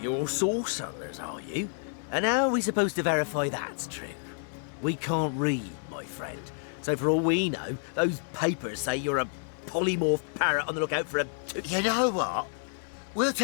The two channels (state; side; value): silent; right; 58 dB below the other